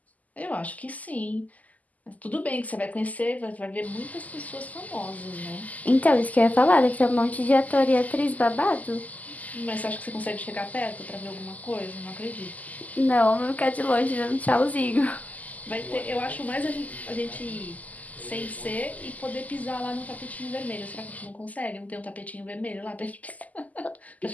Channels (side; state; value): right; late; 0.077 ms